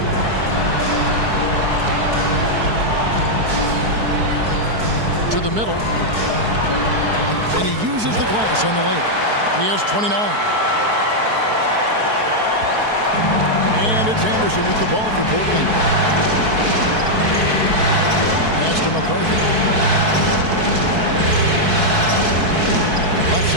To the middle. And he uses the glass on the lane. He has 29. And it's Anderson with the ball for Portland. Pass to McCarthy. Left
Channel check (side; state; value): left; late; 4.6 ms